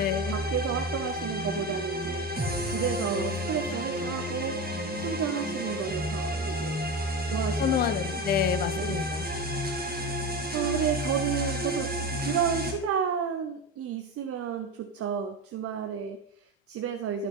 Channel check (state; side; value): normal; both; correlation 0.22